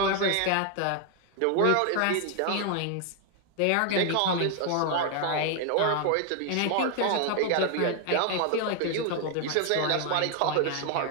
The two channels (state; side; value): different; both; correlation 0.00